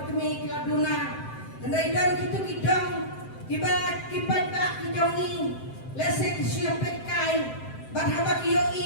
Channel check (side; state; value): right; late; 7.7 ms